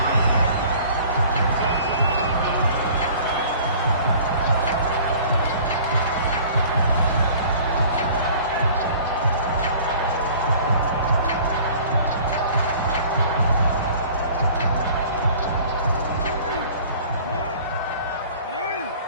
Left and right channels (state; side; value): inverted; both; correlation -0.48